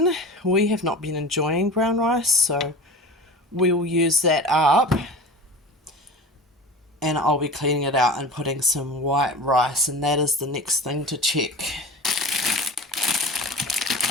we have not been enjoying brown rice, so we will use that up, and I'll be cleaning it out and putting some white rice, and that is the next thing to check.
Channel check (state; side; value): normal; both; correlation 0.34